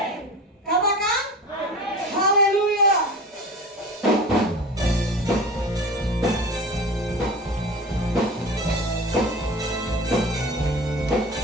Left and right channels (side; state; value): both; normal; correlation 0.35